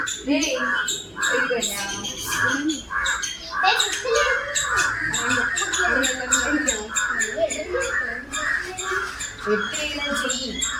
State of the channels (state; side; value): identical; both; correlation 1.00